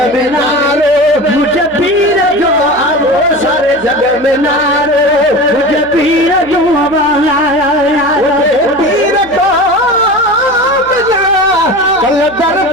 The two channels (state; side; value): noise; right; hum, 22 dB below the sound